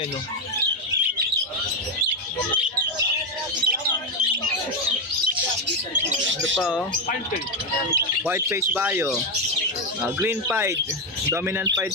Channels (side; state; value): both; normal; correlation 0.06